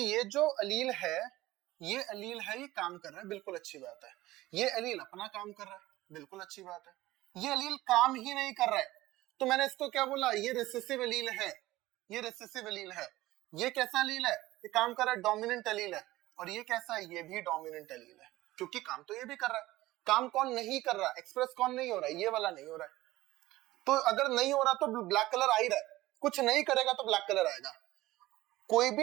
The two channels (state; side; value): quieter; left; 17.4 dB